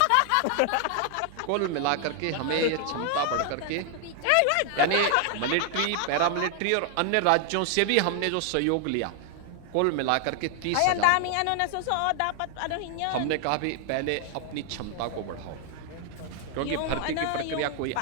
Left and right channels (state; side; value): different; both; correlation 0.00